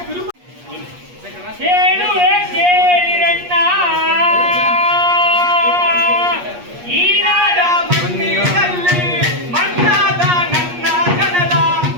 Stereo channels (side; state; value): left; late; 8.4 ms